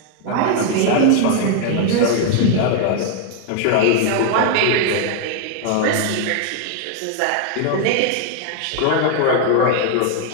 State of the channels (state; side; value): different; both; correlation 0.00